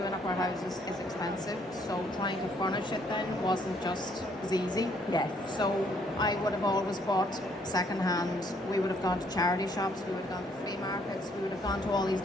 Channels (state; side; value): normal; both; correlation 0.67